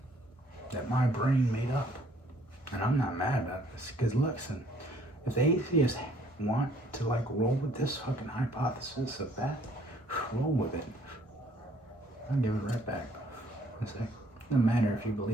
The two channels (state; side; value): normal; both; correlation 0.61